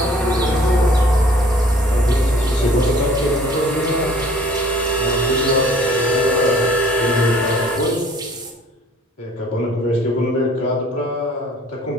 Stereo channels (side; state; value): both; normal; correlation 0.53